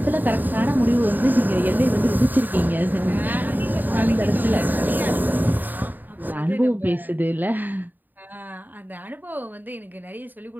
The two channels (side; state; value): left; late; 0.088 ms